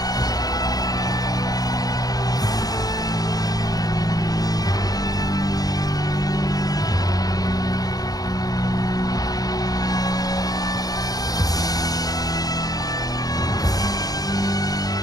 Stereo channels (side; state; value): right; late; 0.18 ms